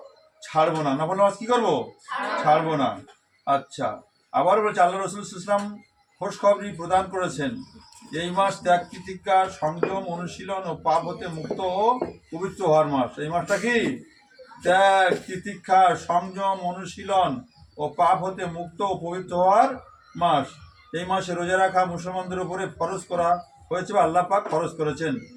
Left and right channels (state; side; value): identical; both; correlation 1.00